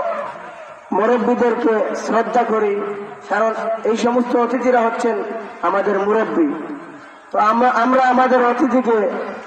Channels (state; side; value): identical; both; correlation 1.00